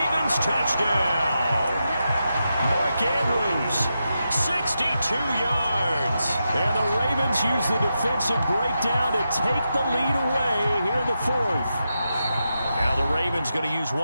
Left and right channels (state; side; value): inverted; both; correlation -0.87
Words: touchdown. Mark Andrews, 62 yards. And the Ravens use the defensive breakdown to take the lead away here in the 4th. Now the Ravens going to use